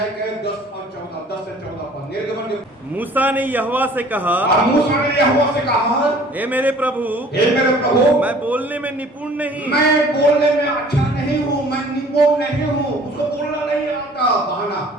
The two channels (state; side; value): normal; both; correlation 0.51